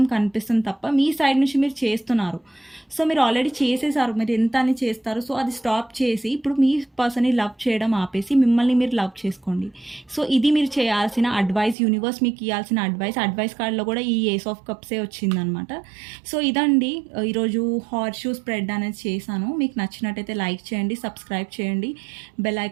కనిపిస్తుంది తప్ప మీ సైడ్ నుంచి మీరు చేస్తున్నారు. సో, మీరు ఆల్రెడీ చేసేసారు. మీరు ఎంత అని చేస్తారు. సో, అది స్టాప్ చేసి ఇప్పుడు మీ పర్సన్‌ని లవ్ చేయడం ఆపేసి మిమ్మల్ని మీరు లవ్ చేసుకోండి. సో, ఇది మీరు చేయాల్సిన అడ్వైస్. యూనివర్స్ మీకు ఇయ్యాల్సిన అడ్వైస్ కార్డ్‌లో కూడా ఈ ఏస్ ఆఫ్ కప్సే వచ్చిందనమాట. సో, ఇదండి ఈరోజు హార్స్ షూ స్ప్రెడ్ అనేది చేశాను. మీకు నచ్చినట్టయితే లైక్ చేయండి, సబ్స్క్రైబ్ చేయండి, బెల్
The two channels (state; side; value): drops out; left; at 11.8 s